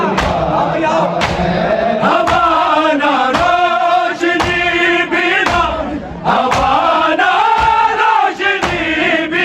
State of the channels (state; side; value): identical; both; correlation 1.00